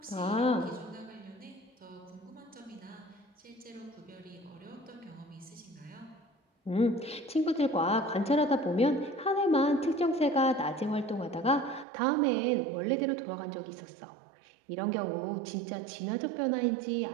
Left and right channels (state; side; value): drops out; left; at 11.9 s